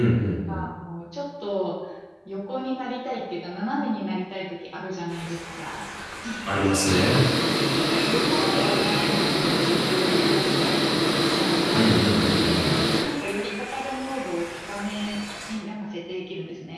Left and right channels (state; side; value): identical; both; correlation 1.00